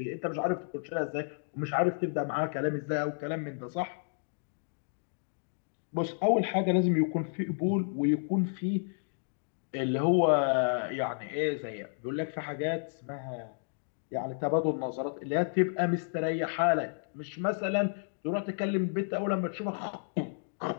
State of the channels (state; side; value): silent; right; digital silence